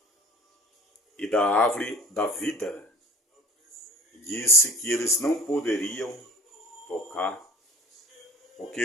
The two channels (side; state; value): both; normal; correlation 0.48